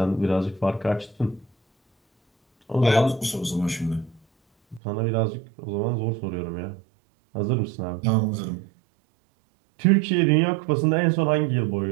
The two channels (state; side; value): drops out; left; at 4.8 s